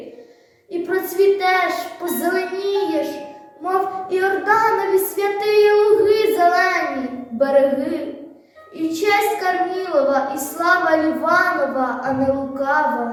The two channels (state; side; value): identical; both; correlation 1.00